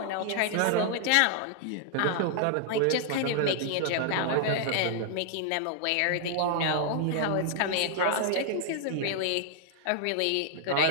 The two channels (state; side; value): different; both; correlation -0.01